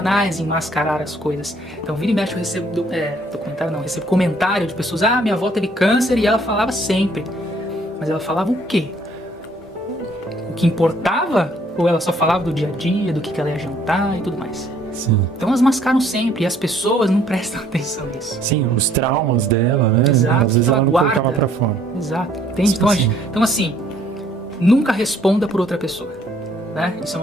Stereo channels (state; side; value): normal; both; correlation 0.62